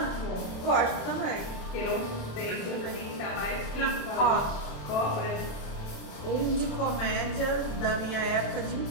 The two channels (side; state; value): right; late; 27 ms